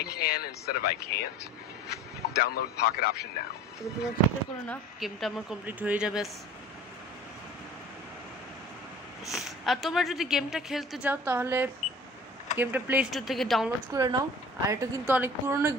can instead of I can't? Download Pocket Option now. গেমটা আমার কমপ্লিট হয়ে যাবে। আর তোমরা যদি গেমটা খেলতে চাও তাহলে গেমটা প্লে স্টোর থেকে ডাউনলোড করে নাও। আর এটা কিন্তু অনেক পুরনো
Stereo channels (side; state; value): both; normal; correlation 0.44